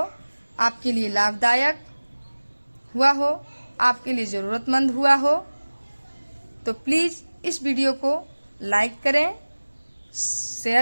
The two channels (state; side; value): inverted; both; correlation -1.00